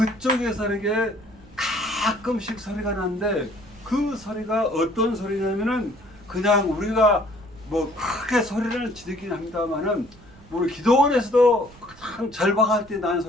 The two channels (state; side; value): noise; right; rumble, 24 dB below the sound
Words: 이게 가끔씩 소리가 나는데 그 소리가 어떤 소리냐면은 그냥 우리가 뭐 크게 소리를 지르긴 합니다만은 우리 기도원에서도 가장 절박할 때 나는